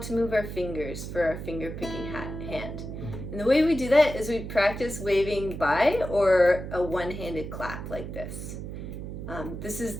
move our fingers for our finger picking hand. And the way we do that is we practice waving by or a one-handed clap like this. This is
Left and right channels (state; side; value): noise; right; hum, 8 dB below the sound